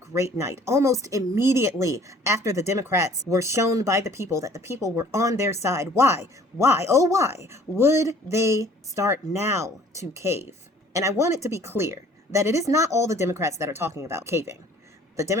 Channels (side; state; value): both; normal; correlation 0.53